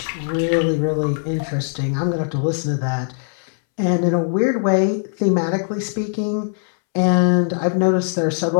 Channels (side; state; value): right; silent; 66 dB below the other